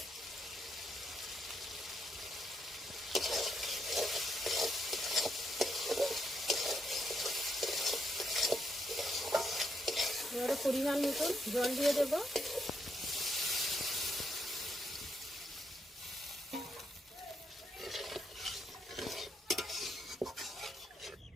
এবারে পরিমাণ মতন জল দিয়ে দেবো।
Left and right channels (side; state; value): both; normal; correlation 0.77